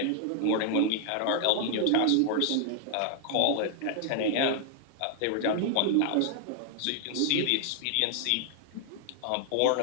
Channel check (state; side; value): different; both; correlation 0.00